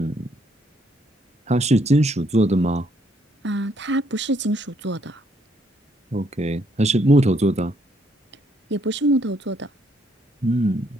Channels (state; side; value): normal; both; correlation 0.70